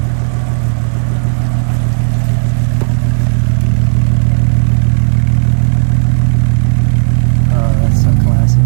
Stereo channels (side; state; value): left; silent; digital silence